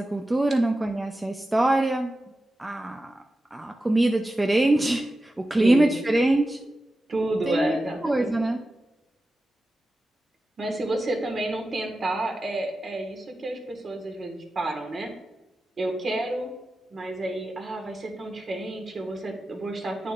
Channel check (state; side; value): normal; both; correlation 0.93